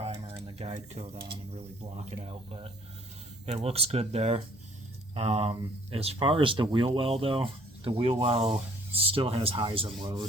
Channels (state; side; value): normal; both; correlation 0.59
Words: and the guide coat on and really block it out, but it looks good there. As far as the wheel well though, the wheel well still has highs and